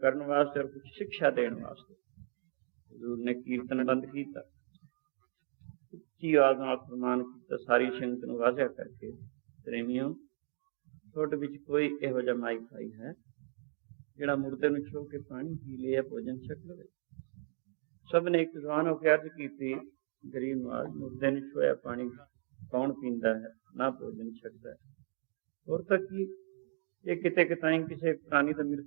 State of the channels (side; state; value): left; silent; digital silence